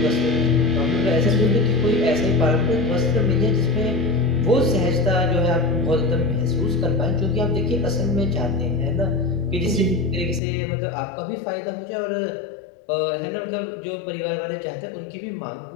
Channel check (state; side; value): drops out; right; at 10.4 s